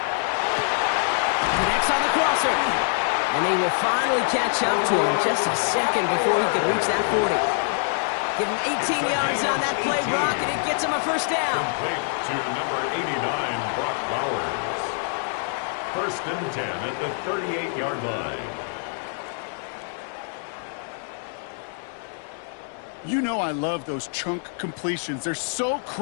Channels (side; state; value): right; silent; 62 dB below the other